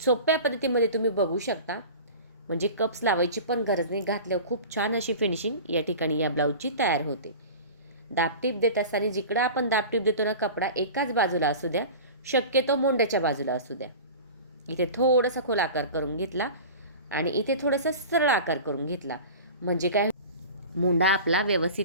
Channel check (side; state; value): both; inverted; correlation -0.36